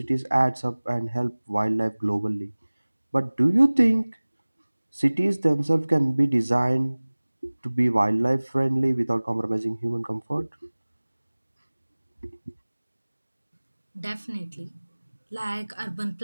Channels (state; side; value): inverted; both; correlation -1.00